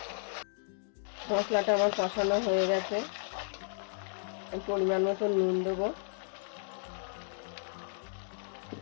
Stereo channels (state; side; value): silent; right; digital silence